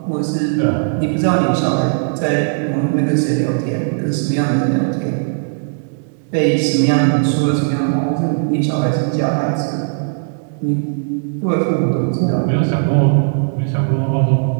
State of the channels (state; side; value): silent; left; digital silence